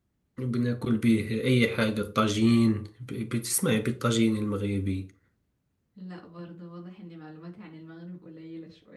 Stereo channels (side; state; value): both; identical; correlation 1.00